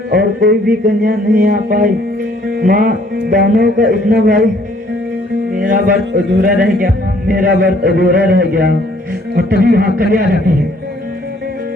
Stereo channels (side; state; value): both; normal; correlation 0.61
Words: और कोई भी कन्या नहीं आ पाई। माँ, दानव का इतना भाई, मेरा व्रत अधूरा रह गया, मेरा व्रत अधूरा रह गया। और तभी वहाँ कन्या आ जाती है।